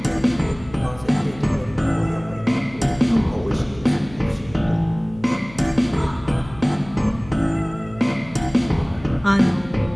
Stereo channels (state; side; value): noise; left; hum, 19 dB below the sound